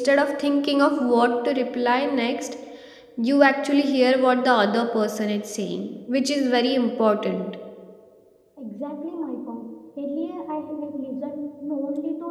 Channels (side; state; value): both; identical; correlation 1.00